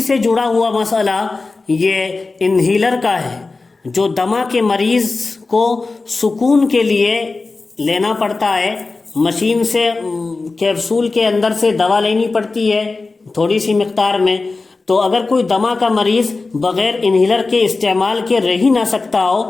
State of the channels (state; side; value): quieter; right; 3.7 dB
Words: سے جڑا ہوا مسئلہ یہ انہیلر کا ہے، جو دمہ کے مریض کو سکون کے لیے لینا پڑتا ہے، مشین سے کیپسول کے اندر سے دوا لینی پڑتی ہے تھوڑی سی مقدار میں، تو اگر کوئی دمہ کا مریض بغیر انہیلر کے استعمال کے رہ ہی نہ سکتا ہو